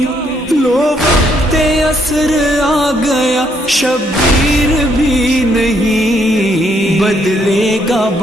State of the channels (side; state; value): both; normal; correlation 0.72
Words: لو وقت عصر آ گیا شبیر بھی نہیں بدلے گا